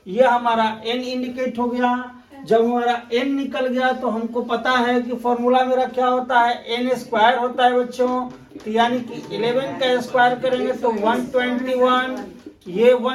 ये हमारा n इंडिकेट हो गया। जब हमारा n निकल गया तो हमको पता है कि फॉर्मूला मेरा क्या होता है, n स्क्वायर होता है बच्चों। तो यानी कि 11 का स्क्वायर करेंगे तो 121, ये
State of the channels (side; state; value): both; identical; correlation 1.00